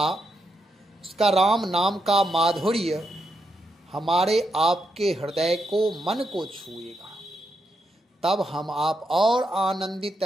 उसका राम नाम का माधुर्य हमारे आपके हृदय को, मन को छुएगा। तब हम आप और आनंदित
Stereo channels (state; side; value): normal; both; correlation 0.82